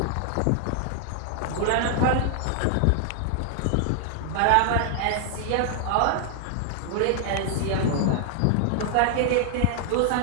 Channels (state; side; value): different; both; correlation -0.01